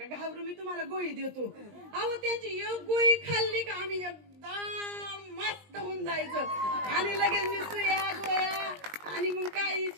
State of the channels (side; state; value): left; late; 20 ms